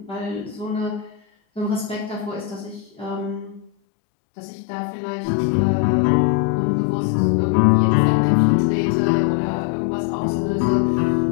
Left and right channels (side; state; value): right; drops out; at 3.7 s